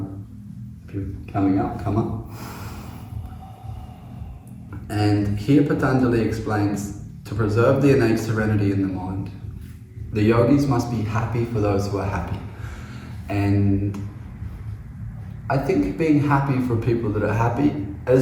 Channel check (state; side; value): identical; both; correlation 1.00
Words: If you're coming up, come up. And here Patanjali explains, to preserve the innate serenity in the mind, the yogis must be happy for those who are happy. And I think being happy for people that are happy, it